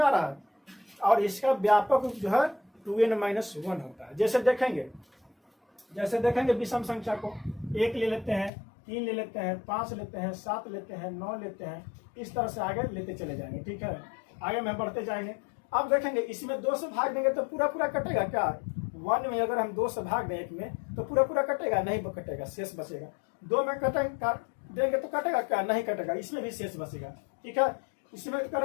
आ रहा है? और इसका व्यापक रूप जो है 2n-1 होता है। जैसे देखेंगे विषम संख्या को 1 ले लेते हैं, 3 ले लेते हैं, 5 लेते हैं, 7 लेते हैं, 9 लेते हैं, इस तरह से आगे लेते चले जाएंगे। ठीक है, आगे में बढ़ते जाएंगे। अब देखेंगे इसमें 2 से भाग देंगे तो पूरा पूरा कटेगा क्या, 1 में अगर हम 2 से भाग दें 1 में तो पूरा पूरा कटेगा, नहीं कटेगा, शेष बचेगा। 2 में देंगे तो कटेगा क्या, नहीं कटेगा, इसमें भी शेष बचेगा। ठीक है, इसमें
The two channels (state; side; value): drops out; right; at 8.5 s